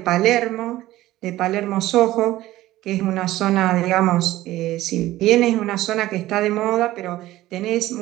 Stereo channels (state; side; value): quieter; left; 15.9 dB